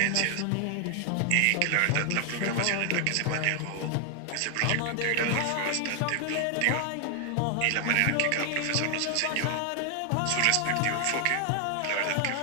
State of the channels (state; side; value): different; both; correlation 0.00